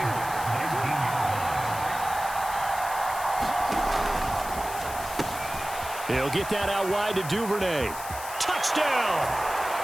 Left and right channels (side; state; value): left; noise; hiss, 11 dB below the sound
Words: He'll get that out wide to Duvernay. Touchdown!